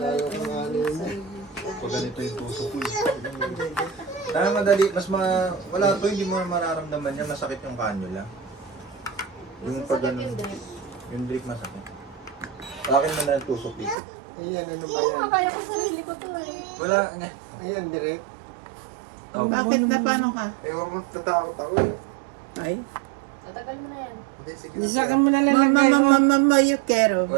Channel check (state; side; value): drops out; left; at 14.0 s